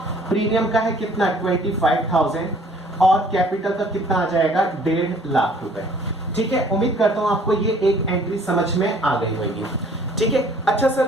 प्रीमियम का है कितना, 25,000, और कैपिटल का कितना आ जाएगा, 1.5 लाख रुपए, ठीक है। उम्मीद करता हूं आपको ये एक एंट्री समझ में आ गई होगी, ठीक है। अच्छा सर,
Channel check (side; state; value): both; normal; correlation 0.56